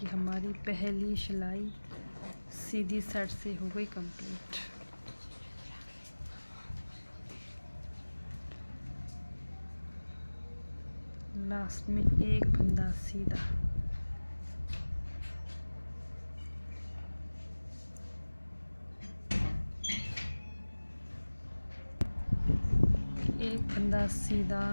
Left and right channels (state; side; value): inverted; both; correlation -1.00